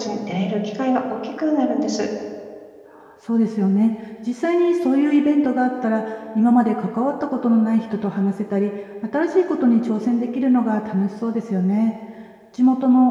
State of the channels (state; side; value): identical; both; correlation 1.00